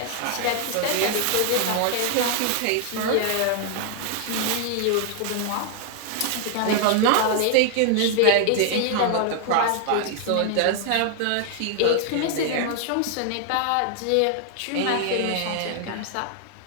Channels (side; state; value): both; different; correlation 0.00